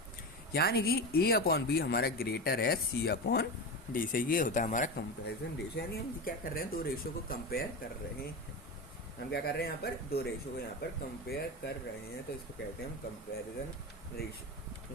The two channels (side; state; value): both; normal; correlation 0.21